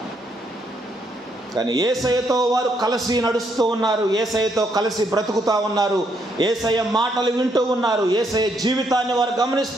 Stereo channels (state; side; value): normal; both; correlation 0.74